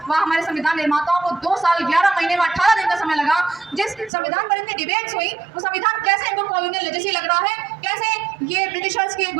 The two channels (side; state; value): left; drops out; at 4.1 s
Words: व हमारे संविधान निर्माताओं को 2 साल 11 महीने में 18 दिन का समय लगा, जिस संविधान पर इतनी डिबेट्स हुई, वो संविधान कैसे इनको कॉलोनियल लेगेसी लग रहा है? कैसे ये ब्रिटिशर्स की